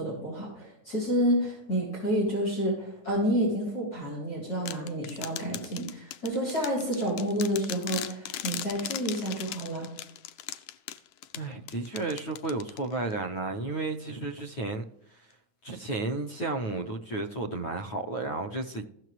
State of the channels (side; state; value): right; late; 10 ms